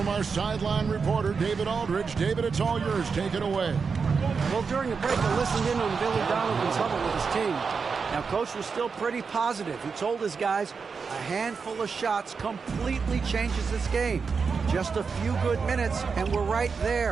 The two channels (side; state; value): left; quieter; 5.3 dB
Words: our sideline reporter, David Aldridge. David, it's all yours. Take it away. Well, during the break, I listened in on Billy Donovan's huddle with his team. Now, Coach was still pretty positive. He told his guys a handful of shots completely changes this game. Just a few good minutes, and we're right